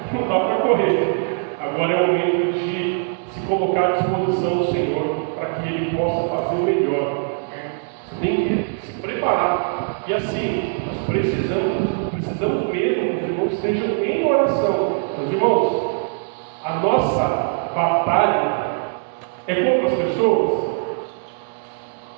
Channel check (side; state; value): left; silent; 63 dB below the other